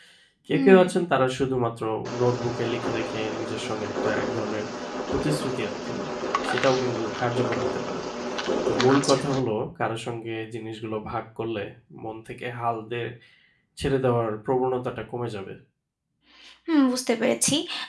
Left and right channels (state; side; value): identical; both; correlation 1.00